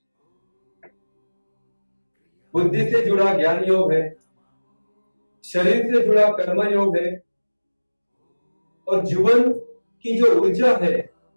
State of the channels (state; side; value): inverted; both; correlation -1.00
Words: बुद्धि से जुड़ा ज्ञान योग है, शरीर से जुड़ा कर्म योग है और जीवन की जो ऊर्जा है,